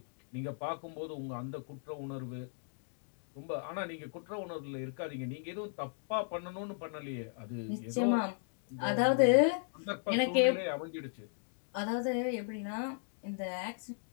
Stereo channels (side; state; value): right; silent; digital silence